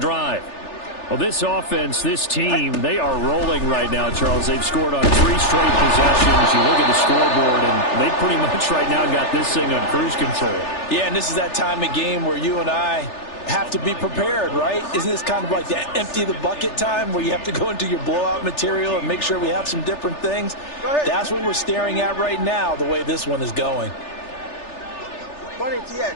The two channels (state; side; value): late; right; 3.4 ms